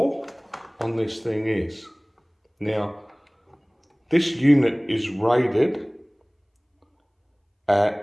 on this thing is. Now, this unit is rated at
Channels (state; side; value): identical; both; correlation 1.00